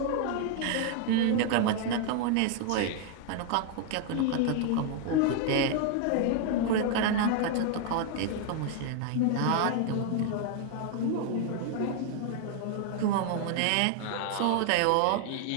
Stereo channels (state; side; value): different; both; correlation 0.00